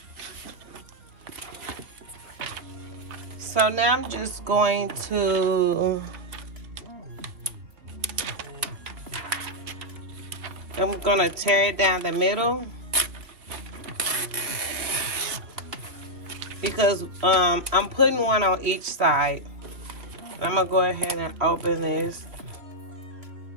I'm just going to, I'm gonna tear it down the middle because I'm putting one on each side. I'm gonna go ahead and open this.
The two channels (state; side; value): late; left; 2.7 ms